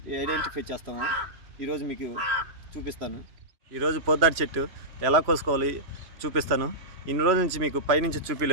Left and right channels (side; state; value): left; late; 3.0 ms